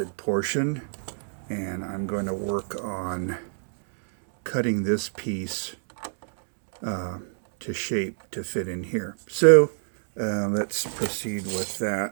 portion, and I'm going to work on cutting this piece to shape to fit in here. So let's proceed with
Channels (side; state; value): left; silent; digital silence